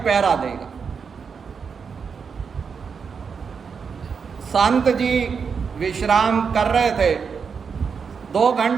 देगा। संत जी विश्राम कर रहे थे, 2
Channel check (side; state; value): left; quieter; 6.0 dB